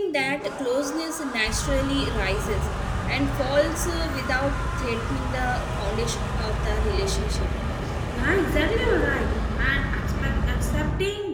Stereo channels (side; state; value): both; identical; correlation 1.00